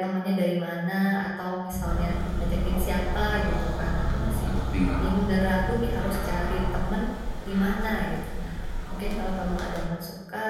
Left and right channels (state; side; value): identical; both; correlation 1.00